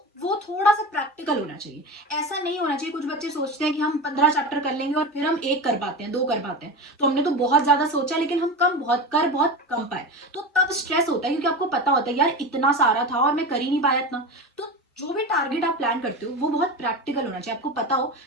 वो थोड़ा सा प्रैक्टिकल होना चाहिए। ऐसा नहीं होना चाहिए, कुछ बच्चे सोचते हैं कि हम 15 चैप्टर कर लेंगे और फिर हम एक कर पाते हैं, 2 कर पाते हैं, तो हमने तो बहुत ज्यादा सोचा लेकिन हम बहुत कम पाए। तो तब स्ट्रेस होता है क्योंकि आपको पता होता है यार इतना सारा था और मैं कर ही नहीं पाया इतना। तो जो भी टारगेट आप प्लान करते हो वो बहुत प्रैक्टिकल होना चाहिए। आपको पता हो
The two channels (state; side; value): normal; both; correlation 0.25